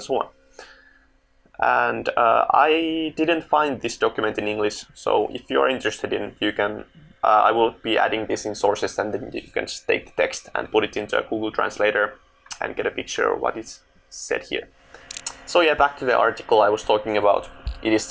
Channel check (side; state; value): both; identical; correlation 1.00